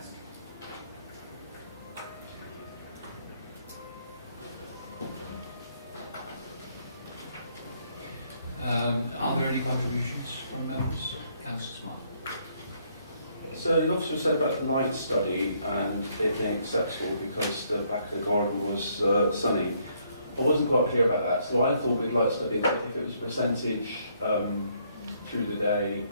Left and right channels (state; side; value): inverted; both; correlation -0.69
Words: Are there any contributions from members? Councillor Smart. So the officer said about the light study and it being acceptable because the back of the garden was sunny. I wasn't quite clear about that, so I thought we'd light study that if it was percentage through the day